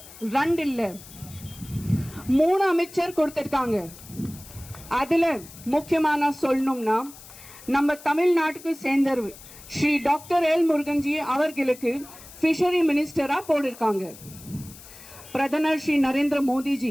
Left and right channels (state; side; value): noise; left; hiss, 18 dB below the sound